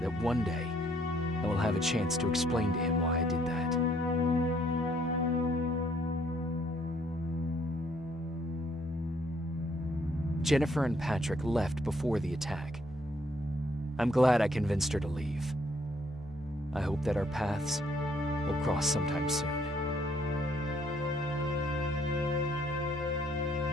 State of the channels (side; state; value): both; normal; correlation 0.66